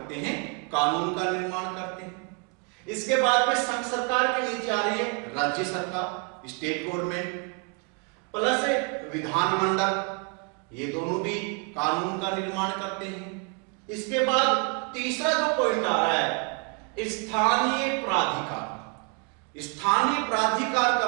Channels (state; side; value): quieter; left; 35.2 dB